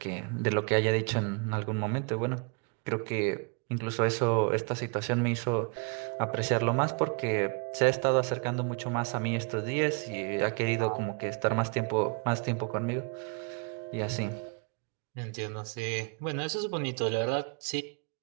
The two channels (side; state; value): left; quieter; 34.5 dB